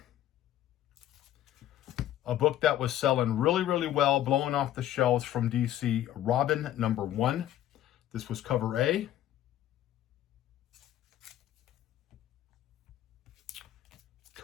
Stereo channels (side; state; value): right; quieter; 12.5 dB